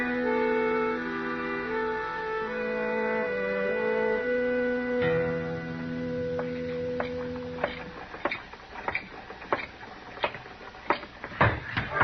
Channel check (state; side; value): identical; both; correlation 1.00